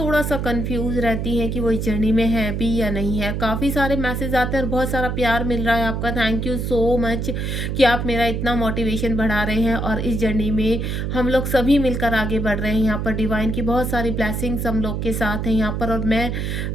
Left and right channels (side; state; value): right; noise; hum, 2 dB below the sound